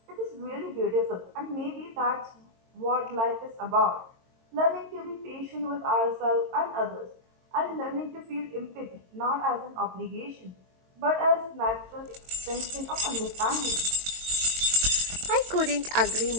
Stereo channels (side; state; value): left; late; 22 ms